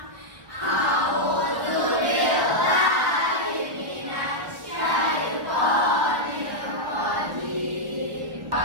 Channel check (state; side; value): late; left; 1.4 ms